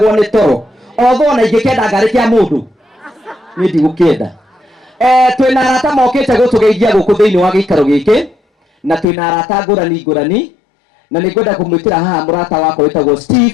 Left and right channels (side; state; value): right; drops out; at 9.1 s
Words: nĩ toro otho na ingĩkenda ngarĩ kĩa mũndũ niĩ ndigũkĩenda. Twĩna arata mokĩte gũtũgeithia gũkũ thĩinĩ wa gĩikaro gĩkĩ na twĩna arata ngũrani na nĩngwenda kũmwĩtĩra haha mũrata wakwa wĩtagwo